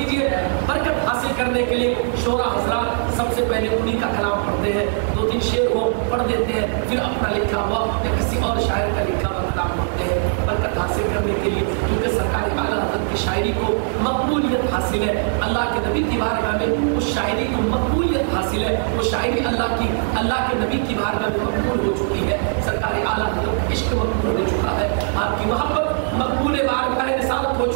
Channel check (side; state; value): left; silent; digital silence